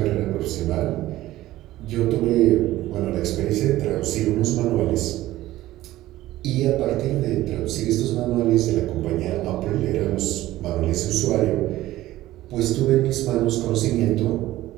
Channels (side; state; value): left; quieter; 15.7 dB